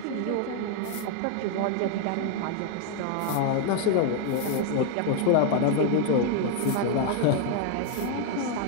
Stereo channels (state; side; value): different; both; correlation 0.00